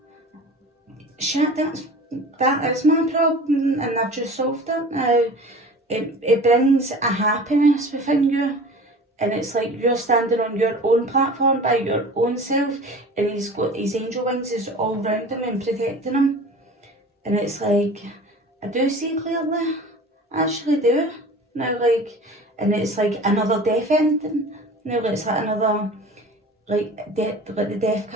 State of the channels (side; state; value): both; normal; correlation 0.40